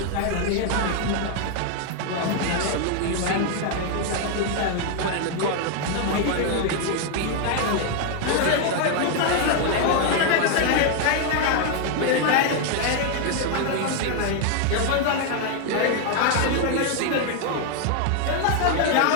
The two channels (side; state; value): both; different; correlation 0.00